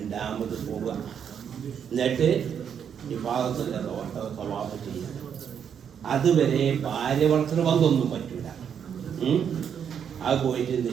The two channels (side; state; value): left; quieter; 8.0 dB